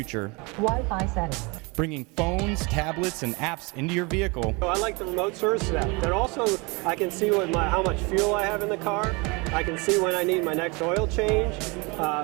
Wi-Fi settings. Bringing phones, tablets, and apps into your vehicle. So I like the remote service of that. But also, I can see how much fuel I have in the car. I can see when I need my next oil change.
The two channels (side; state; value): left; quieter; 28.0 dB